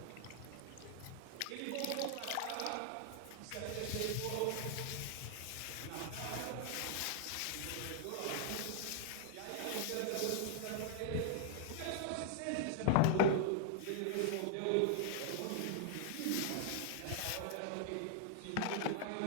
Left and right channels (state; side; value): different; both; correlation -0.01